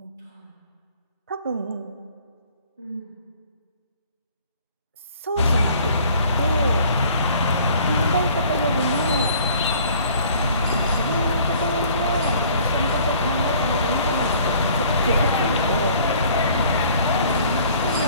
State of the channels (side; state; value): both; inverted; correlation -0.54